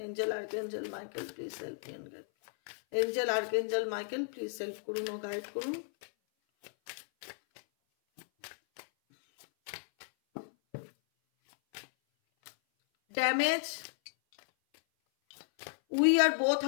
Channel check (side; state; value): right; silent; 55 dB below the other